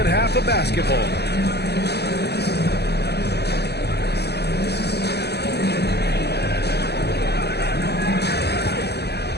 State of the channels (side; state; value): right; late; 0.48 ms